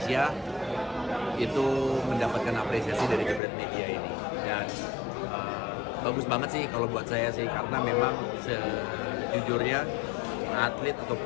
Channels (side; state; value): right; drops out; at 3.4 s